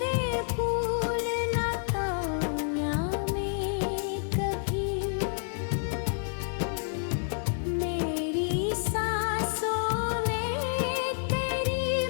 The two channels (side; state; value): right; silent; 55 dB below the other